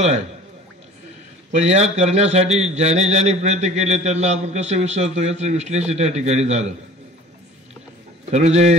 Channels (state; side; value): normal; both; correlation 0.44